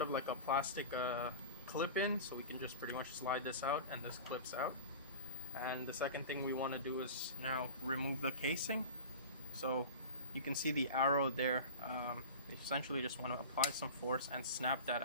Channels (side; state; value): both; inverted; correlation -0.34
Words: of like a plastic clip-in, so we can just pretty much slide this out and this clips out. And the second thing we want to do is now remove the casing. So you can see the arrow there. You essentially just want to apply some force and snap that